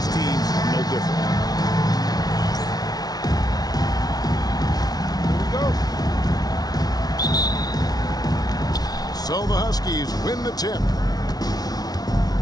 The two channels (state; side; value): late; right; 0.19 ms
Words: teams, no different. Here we go. So the Huskies win the tip.